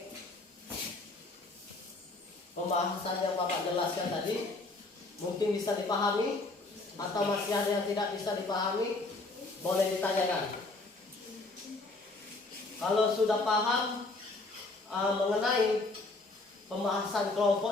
yang Bapak jelaskan tadi? Mungkin bisa dipahami atau masih ada yang tidak bisa dipahami? Boleh ditanyakan. Kalau sudah paham mengenai pembahasan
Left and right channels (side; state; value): right; quieter; 3.2 dB